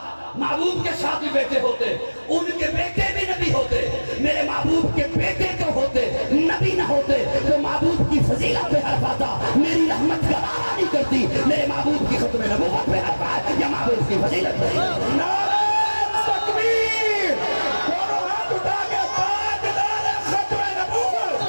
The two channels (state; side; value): inverted; both; correlation -1.00